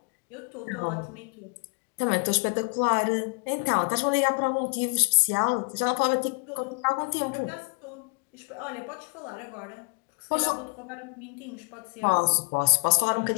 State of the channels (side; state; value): right; quieter; 37.3 dB